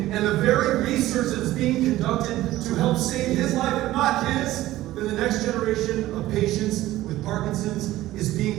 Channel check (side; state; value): left; quieter; 15.8 dB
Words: and the very research that's being conducted to help save his life, if not his, then the next generation of patients with Parkinson's is